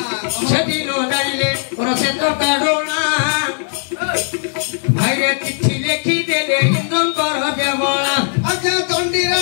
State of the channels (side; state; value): right; silent; 60 dB below the other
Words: सेदिन जाइले और से तो काढोला भाई रे चिट्ठी लिखि देले इंद्रन कर देवला आजा दंडी